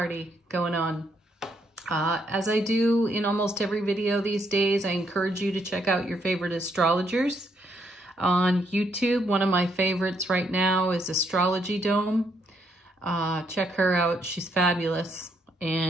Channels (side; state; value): both; normal; correlation 0.74